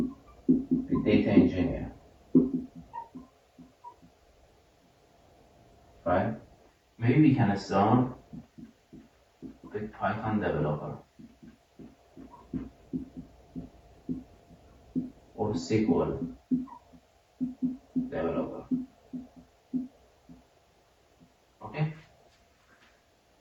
data engineer. Right? Maybe we can start with Python developer or SQL developer. Okay?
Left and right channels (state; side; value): identical; both; correlation 1.00